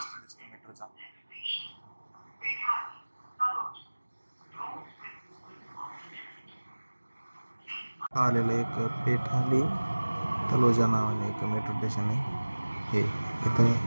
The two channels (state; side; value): inverted; both; correlation -1.00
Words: दिसतो मेट्रोचा. आलेलं एक पेठाली तलोजा नावाने एक मेट्रो स्टेशन आहे. हे इथं